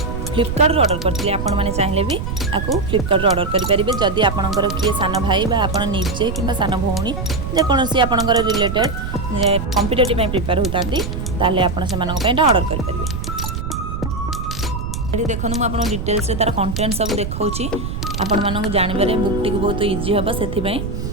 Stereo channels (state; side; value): noise; right; rumble, 5 dB below the sound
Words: फ्लिपकार्ट ऑर्डर करते आपण मैंने चाहिए भी आपको फ्लिपकार्ट ऑर्डर करेंगे जदि आपणकर किए सान भाई आप निजे कि सान भौणी जेकोसी आपणकर रिलेटेड कॉम्पिटिटिव प्रिपेयर होता आप ऑर्डर करेंगे। देखो मुझे डिटेल्स तार कंटेंट सब देखा आपण मानक जानवर बुक टी बहुत इजी हम से